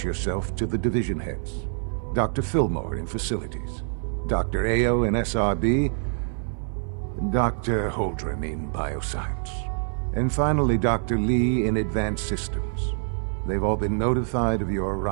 yourself to the division heads. Dr. Fillmore in Facilities, Dr. Ao in SRB, Dr. Holdren in Bioscience, and finally Dr. Lee in Advanced Systems. They've all been notified of your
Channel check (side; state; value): left; silent; 56 dB below the other